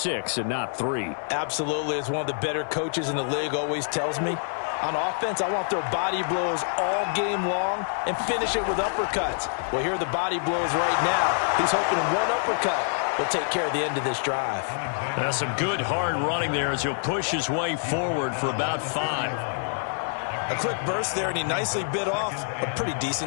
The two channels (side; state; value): right; silent; digital silence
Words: and not 3. Absolutely. As one of the better coaches in the league always tells me, on offense, I want their body blows all game long and finish it with uppercuts. Well, here are the body blows right now. He's hoping one uppercut will take care of the end of this drive. That's some good hard running there as he'll push his way forward for about 5. A quick burst there, and he nicely bit off a pretty